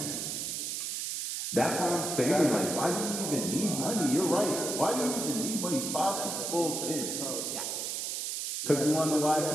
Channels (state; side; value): noise; right; hiss, 3 dB below the sound